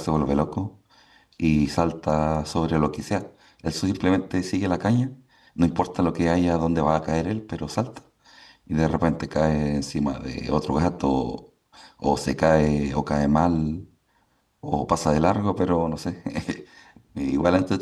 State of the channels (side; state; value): both; identical; correlation 1.00